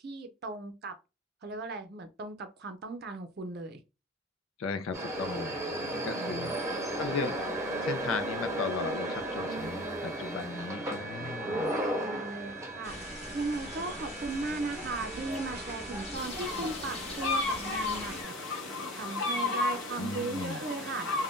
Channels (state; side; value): normal; both; correlation 0.39